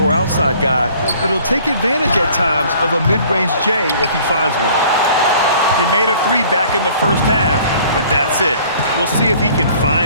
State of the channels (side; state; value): both; inverted; correlation -0.53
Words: outside guy, but he'll take advantage at times of a mid-range J if he finds one. He made a three back in the first half, but that's it. We'll see if he can